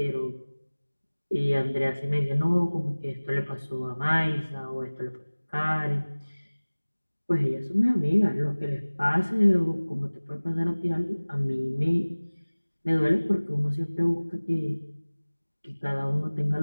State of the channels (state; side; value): inverted; both; correlation -1.00